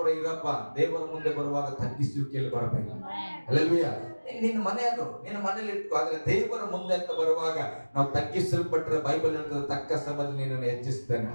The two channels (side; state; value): both; inverted; correlation -1.00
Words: ಇರಪ್ಪ, ದೇವರ ಮುಂದೆ ಬರುವಾಗ ತಗ್ಗಿಸುವಿಕೆಯಲ್ಲಿ ಬರಬೇಕು. ಹಲ್ಲೆಲೂಯ. ನಿನ್ನ ಮನೆ ಅದು, ನಿನ್ನ ಮನೇಲಿ ಇಟ್ಕೋ. ಆದ್ರೆ ದೇವರ ಮುಂದೆ ಅಂತ ಬರುವಾಗ ನಾವು ತಗ್ಗಿಸಲ್ಪಟ್ಟರೆ ಬೈಬಲ್ ಹೇಳ್ತದೆ, ತಕ್ಕ ಸಮಯದಲ್ಲಿ ನಿನ್ನನ್ನು ಹೆಚ್ಚಿಸ್ತೇನೆ.